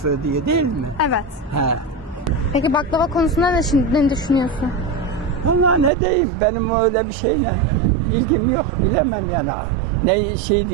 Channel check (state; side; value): drops out; left; at 5.9 s